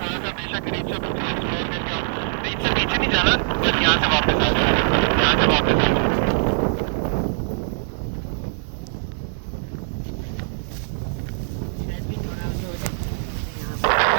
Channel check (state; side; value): silent; left; digital silence